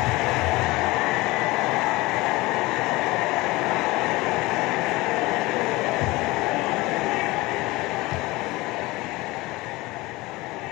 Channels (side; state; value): right; quieter; 21.1 dB